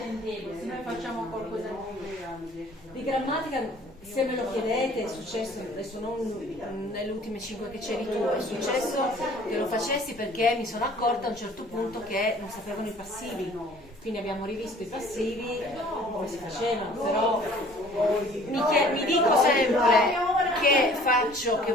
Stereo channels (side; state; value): both; normal; correlation 0.52